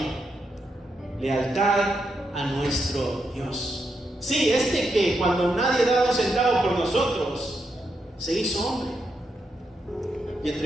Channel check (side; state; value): both; normal; correlation 0.83